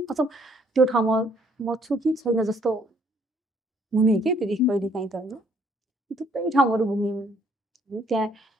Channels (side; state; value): both; normal; correlation 0.64